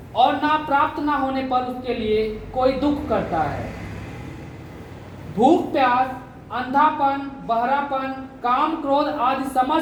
और ना प्राप्त ना होने पर उसके लिए कोई दुख करता है। भूख प्यास, अंधापन, बहरापन, काम क्रोध आदि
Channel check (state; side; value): identical; both; correlation 1.00